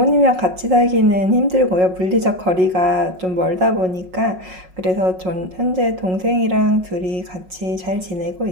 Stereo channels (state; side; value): late; left; 5.5 ms